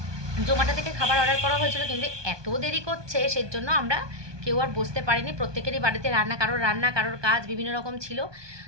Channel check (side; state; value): left; late; 1.2 ms